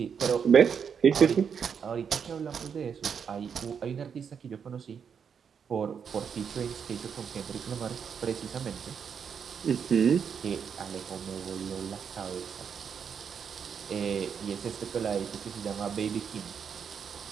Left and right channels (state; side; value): quieter; left; 7.0 dB